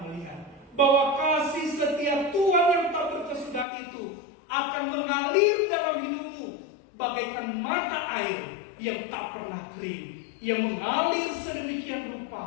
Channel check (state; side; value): drops out; right; at 3.7 s